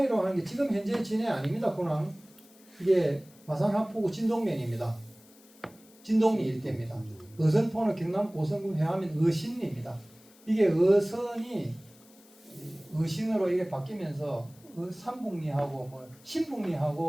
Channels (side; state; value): left; noise; hiss, 26 dB below the sound